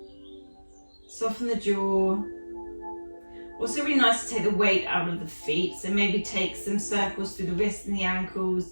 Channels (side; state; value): both; inverted; correlation -1.00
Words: Soften the jaw. Also really nice to take the weight out of the feet, so maybe take some circles through the wrists and the ankles.